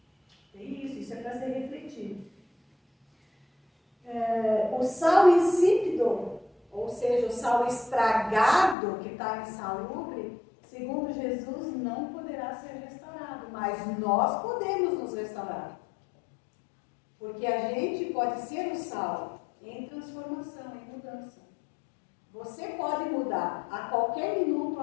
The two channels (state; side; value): drops out; right; at 8.8 s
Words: Tem isso é para ser refletido. O sal insípido, ou seja, o sal estragado que está insalubre, segundo Jesus, não poderá ser restaurado, mas nós podemos nos restaurar. Porque a gente pode ser o sal em transformação, em mudança. Você pode mudar a qualquer minuto,